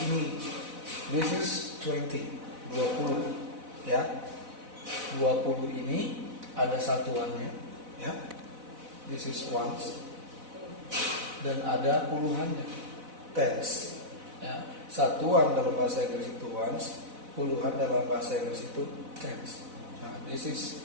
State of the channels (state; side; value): late; left; 4.0 ms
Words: ini. This is 20 ya. 20 ini ada satuannya ya. This is ones. Dan ada puluhannya, tens ya. Satuan dalam bahasa Inggris itu ones, puluhan dalam bahasa Inggris itu tens. Nah, this is